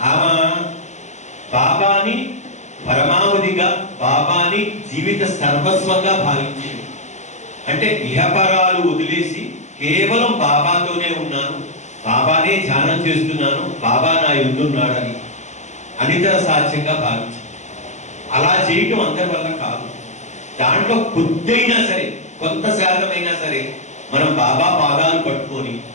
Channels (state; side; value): late; right; 0.34 ms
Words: ఆమె బాబాని పరమావధిగా, బాబాని జీవిత సర్వస్వంగా భావించింది. అంటే ఇహపరాలు వదిలేసి కేవలం బాబాతోనే ఉన్నాను, బాబానే ధ్యానం చేస్తున్నాను, బాబా నా యుద్ధున్నాడని అనితర సాధ్యంగా భావించింది. అలా చేయటం అందరి వల్ల కాదు. దాంట్లో కొద్దిైనా సరే, కొంత శాతమైనా సరే మనం బాబా పాదాలు పట్టుకొని